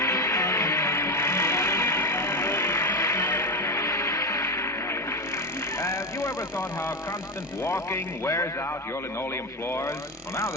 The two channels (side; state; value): both; normal; correlation 0.15